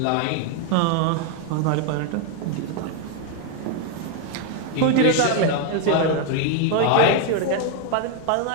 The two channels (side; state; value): both; different; correlation 0.01